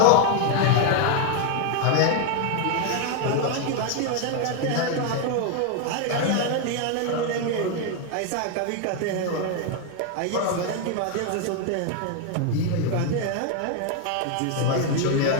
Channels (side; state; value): both; different; correlation 0.01